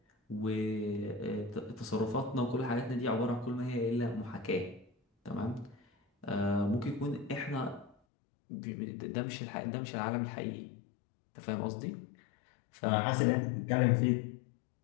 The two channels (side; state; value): right; drops out; at 8.0 s